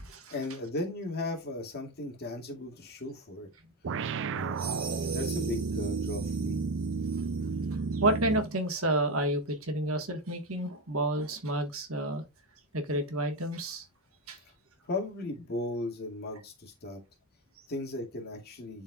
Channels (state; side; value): normal; both; correlation 0.13